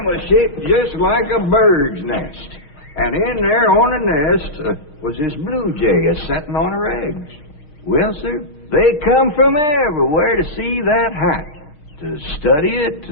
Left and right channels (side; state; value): right; late; 6.6 ms